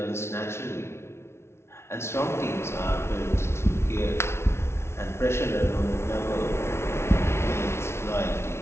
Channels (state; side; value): late; right; 0.12 ms